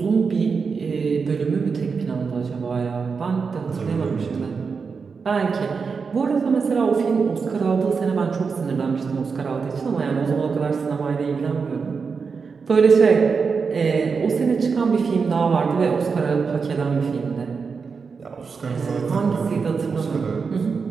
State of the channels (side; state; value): left; quieter; 5.3 dB